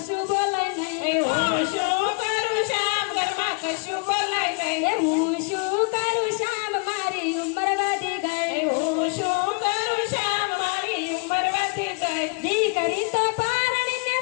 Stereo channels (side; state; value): right; quieter; 33.3 dB